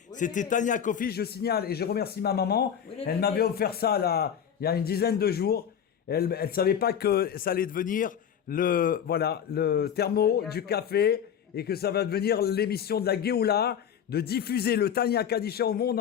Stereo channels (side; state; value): right; quieter; 8.5 dB